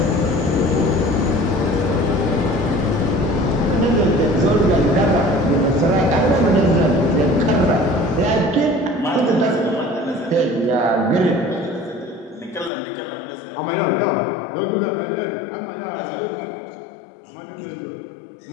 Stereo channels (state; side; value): drops out; right; at 12.7 s